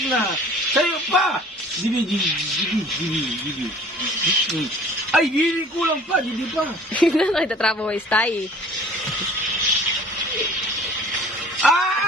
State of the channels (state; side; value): normal; both; correlation 0.49